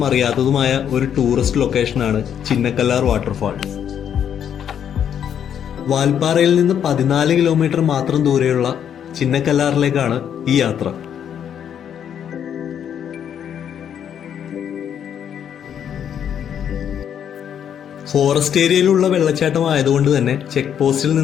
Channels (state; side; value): quieter; right; 8.9 dB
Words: അറിയാത്തതുമായ ഒരു ടൂറിസ്റ്റ് ലൊക്കേഷനാണ് ചിന്നക്കല്ലാർ വാട്ടർഫാൾസ്. വാൽപ്പാറയിൽ നിന്ന് 14 കിലോമീറ്റർ മാത്രം ദൂരെയുള്ള ചിന്നക്കല്ലാറിലേക്കാണ് ഈ യാത്ര. ഫോറസ്റ്റ് ഏരിയയിലുള്ള വെള്ളച്ചാട്ടം ആയതുകൊണ്ട് തന്നെ ചെക്ക് പോസ്റ്റിൽ